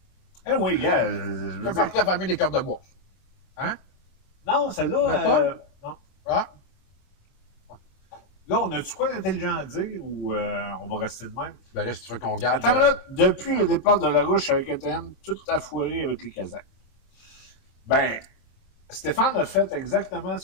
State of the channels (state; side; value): late; right; 23 ms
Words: oui, gars. Tu fais partie de la famille des cordes de bois. Hein? Non, celle-là. Non. Ah. Là, on a-tu quoi d'intelligent à dire ou on va rester de même? Ben là, si tu veux qu'on garde. Attends, là, depuis le départ de la Ruche avec ETN, tout a foiré avec les Kazakhs. Ben, Stéphane a fait exactement